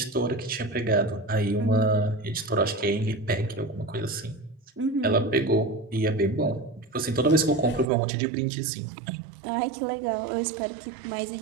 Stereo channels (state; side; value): drops out; left; at 7.9 s